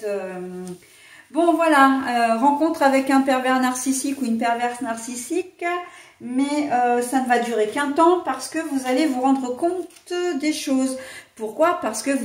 Bon voilà, rencontre avec un pervers narcissique ou une perverse narcissique, mais ça ne va durer qu'un temps parce que vous allez vous rendre compte des choses. Pourquoi? Parce que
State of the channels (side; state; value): both; identical; correlation 1.00